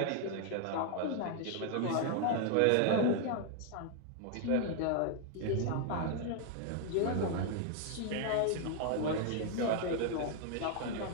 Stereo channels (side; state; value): both; different; correlation 0.00